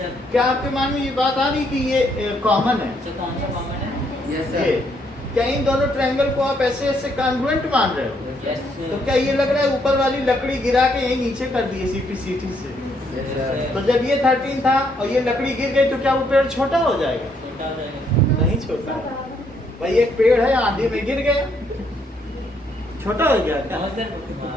क्या आपके मन में ये बात आ रही है कि ये कॉमन है? सर कौन सा कॉमन है? Yes, ये sir. क्या इन दोनों ट्रायंगल को आप ऐसे ऐसे कॉन्ग्रुएंट मान रहे हो? यस तो सर। क्या ये लग रहा है ऊपर वाली लकड़ी गिरा के यही नीचे कर दिए सीपीसीटी से? Yes, sir. तो जब ये 13 था और ये लकड़ी गिर गई तो क्या वो पेड़ छोटा हो जाएगा? छोटा हो जाएगा। नहीं छोटा। भाई एक पेड़ है आंधी में गिर गया, छोटा हो गया क्या? हाँ सर,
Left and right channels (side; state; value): both; normal; correlation 0.72